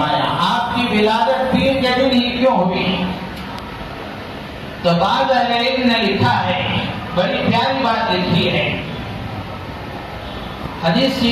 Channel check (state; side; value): identical; both; correlation 1.00